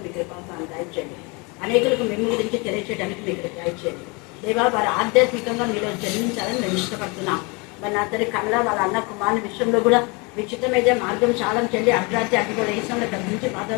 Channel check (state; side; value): quieter; right; 29.0 dB